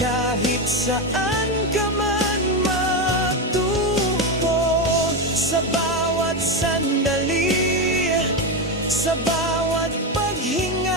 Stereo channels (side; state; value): both; normal; correlation 0.12